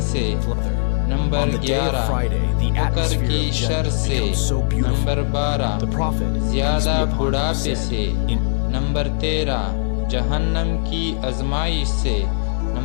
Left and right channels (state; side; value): silent; right; digital silence